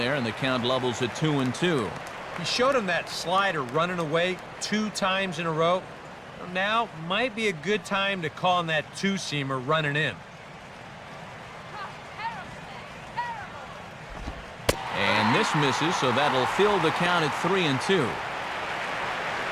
and the count levels at 2-2. He showed him that slider running away 2 times in a row. Now might be a good time to call on that 2-seamer running in. And this misses, so that'll fill the count at 3-2.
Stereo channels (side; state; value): both; identical; correlation 1.00